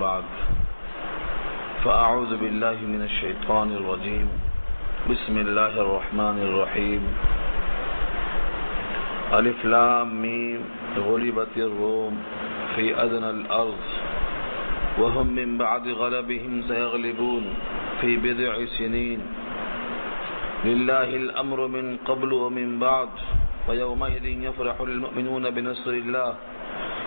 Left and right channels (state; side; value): inverted; both; correlation -1.00